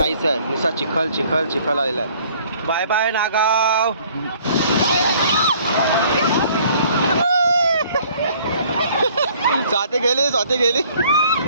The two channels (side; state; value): both; inverted; correlation -0.58